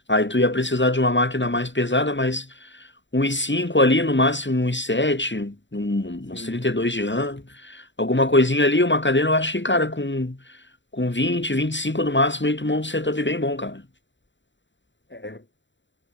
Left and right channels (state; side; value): late; right; 0.54 ms